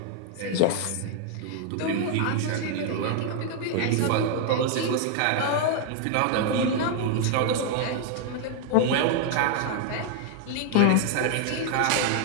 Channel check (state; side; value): different; both; correlation 0.00